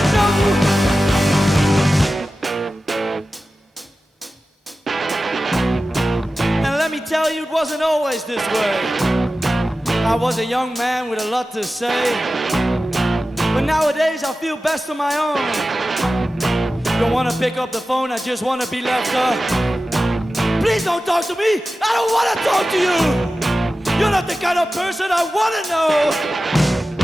Tell you it wasn't always this way. I was a young man with a lot to say, but nowadays I feel best on my own. Don't want to pick up the phone, I just want to be left up. Please don't talk to me, I don't want to talk to you. You're not the kind of person I want to know.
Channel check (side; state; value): both; normal; correlation 0.94